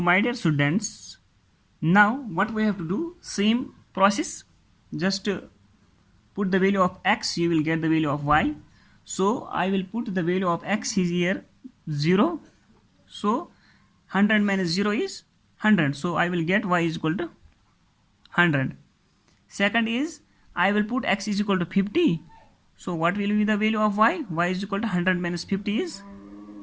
my dear students, now what we have to do, same process, just put the value of X, you will get the value of Y. So I will put the value of X is here 0. So 100 minus 0 is 100. So I will get Y is equal to 100. Second is, I will put X is equal to 50. So what will be the value of Y? Y is equal to 100 minus 50 is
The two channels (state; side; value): identical; both; correlation 1.00